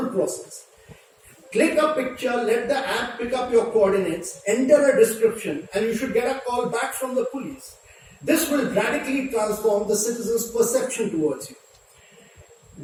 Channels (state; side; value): identical; both; correlation 1.00